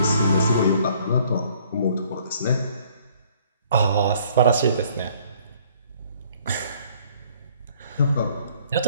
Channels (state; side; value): inverted; both; correlation -0.59